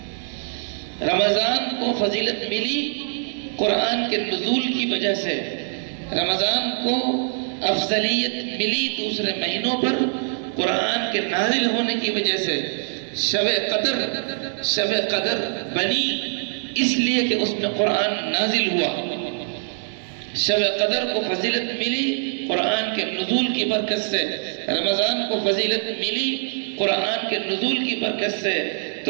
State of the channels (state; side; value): silent; left; 63 dB below the other